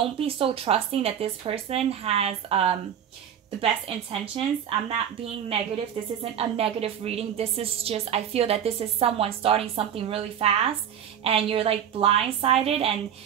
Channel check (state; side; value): quieter; left; 9.2 dB